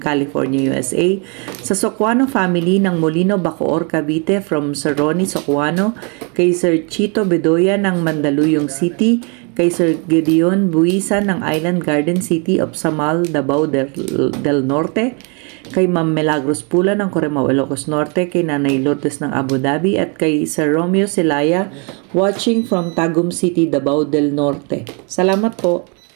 USA. Sa Socuano family ng Molino, Bacoor, Cavite from Sir Ronnie Socuano. Kay Sir Chito Bedoya ng Mandaluyong City. Kay Sir Gideon Buisan ng Island Garden City of Samal, Davao del Norte. Kay Ma'am Milagros Pula ng Corimao, Ilocos Norte. Kay Nanay Lourdes ng Abu Dhabi. At kay Sir Romeo Silaya watching from Tagum City, Davao del Norte. Salamat po.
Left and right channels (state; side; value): quieter; left; 34.9 dB